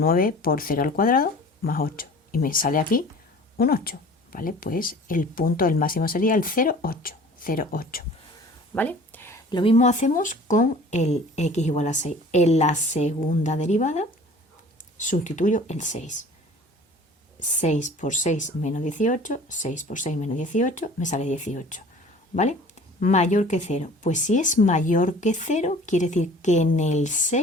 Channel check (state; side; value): normal; both; correlation 0.46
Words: por 0 al cuadrado más 8. Y me sale aquí un 8, ¿vale? Pues el punto del máximo sería el 0, 8, 0, 8, ¿vale? Lo mismo hacemos con el x igual a 6. En la segunda derivada sustituyo el 6. 6 por 6 menos 18, 6 por 6 menos 18, me sale 18, ¿vale? Mayor que 0. Pues si es mayor que 0, quiere decir que en el